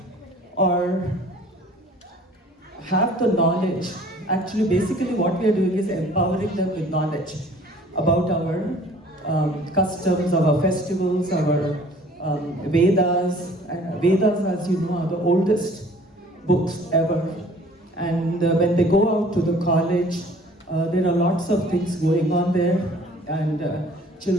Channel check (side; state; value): both; normal; correlation 0.52